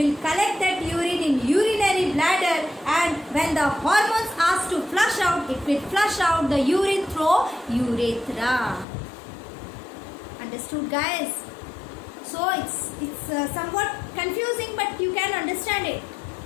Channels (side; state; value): right; drops out; at 8.8 s